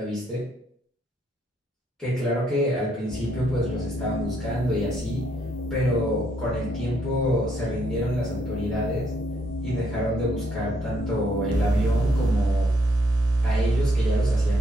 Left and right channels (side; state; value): both; normal; correlation 0.72